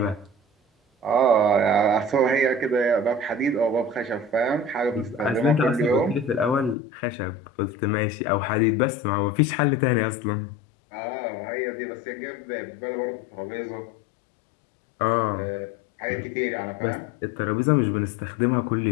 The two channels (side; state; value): right; drops out; at 6.8 s